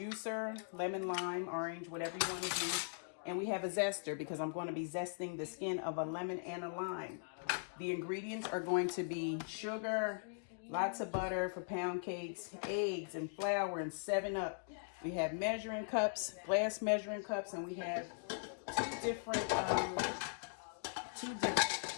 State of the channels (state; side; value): silent; right; digital silence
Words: lemon, lime, orange, whatever you want to do. And we have a zester because I'm going to be zesting the skin of a lemon and a lime. The ingredients are going to be sugar, lots of butter for pound cakes, eggs and flour, and 7-Up. We have measuring cups, glass measuring cups, and we have two different